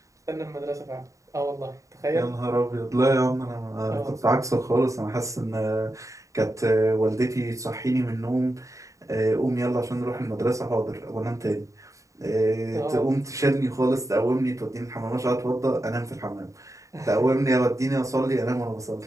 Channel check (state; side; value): late; left; 0.16 ms